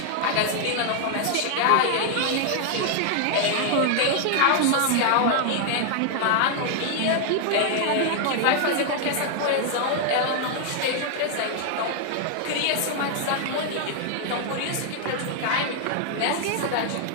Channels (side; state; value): both; different; correlation 0.00